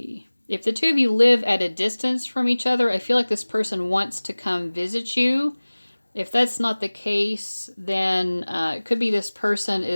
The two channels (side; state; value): both; inverted; correlation -1.00